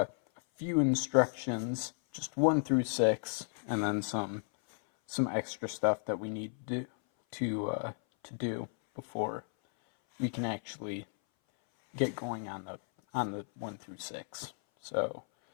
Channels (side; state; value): right; silent; 55 dB below the other